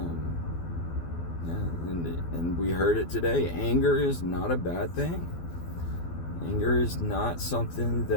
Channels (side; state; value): right; late; 12 ms